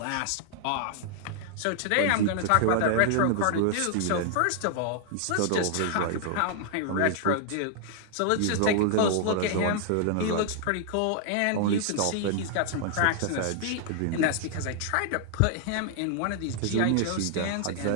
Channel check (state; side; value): different; both; correlation -0.01